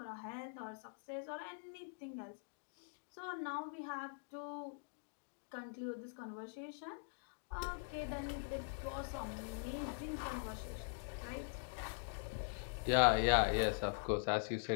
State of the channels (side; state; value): right; silent; digital silence